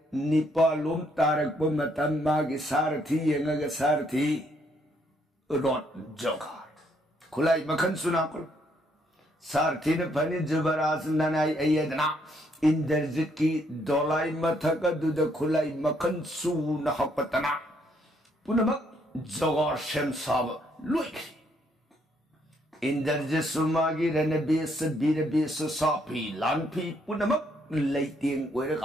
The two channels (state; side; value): normal; both; correlation 0.71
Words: निपालोम तारक पर मतम मागी सारथी यंगग सारथी रोट जोगार खुलाई मखन सुना करो सारथी ने फनी जुबराज ननाई अयदना इंद्रजित की दोलाई मथक दुद खुलाई मखन सू नहपतना पुनमक जोगार शेम साब लुइक इंद्रजित सुमागी रणबेस बीरबेस सापी लानफी पुनमक लैतेंग